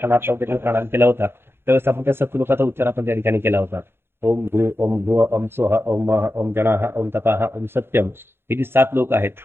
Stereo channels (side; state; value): left; late; 0.11 ms